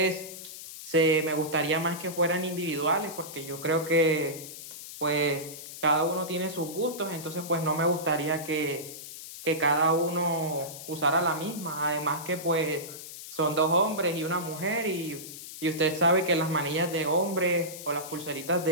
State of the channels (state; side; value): noise; left; hiss, 12 dB below the sound